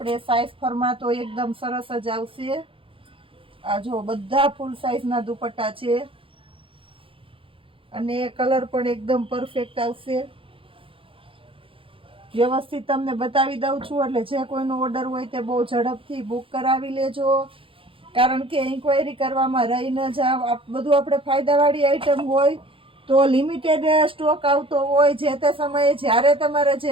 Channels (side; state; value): left; late; 0.26 ms